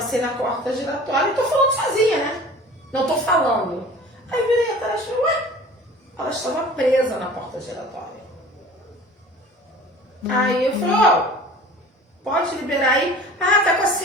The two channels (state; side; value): normal; both; correlation 0.43